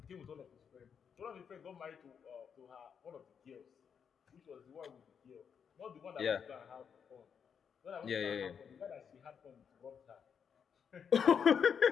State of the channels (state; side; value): quieter; right; 7.1 dB